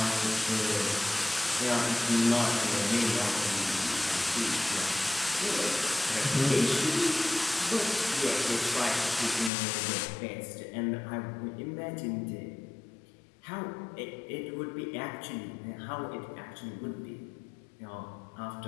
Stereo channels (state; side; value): drops out; right; at 9.5 s